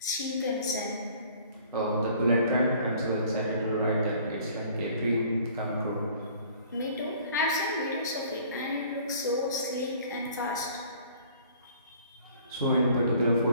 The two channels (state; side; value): inverted; both; correlation -0.53